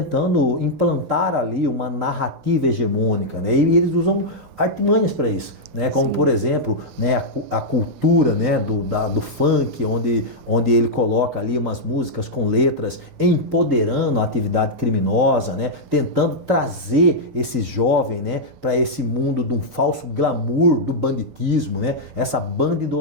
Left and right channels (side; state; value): left; late; 6.7 ms